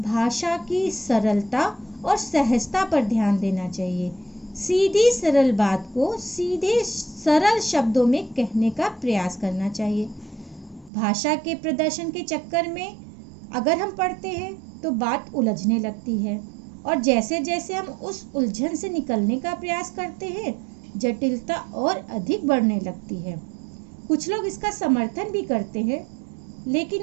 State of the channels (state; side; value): drops out; left; at 10.9 s